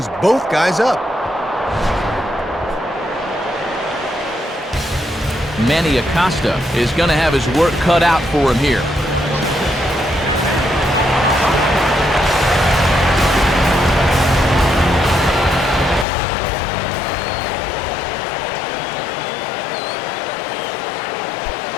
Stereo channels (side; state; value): right; drops out; at 16.1 s